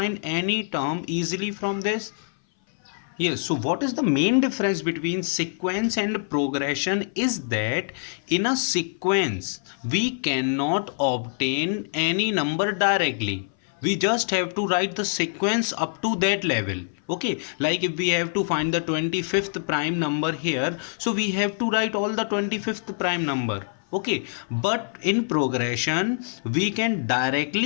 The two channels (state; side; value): silent; right; 58 dB below the other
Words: any term easily from this. Yes, so what is the main difference between sequence and progression is that in a sequence we cannot obtain any number directly. We just have to write the sequence up to that level. Okay, like if we have to find the 25th prime number here, so we have to write all the 25th prime number. Okay, but in progression we can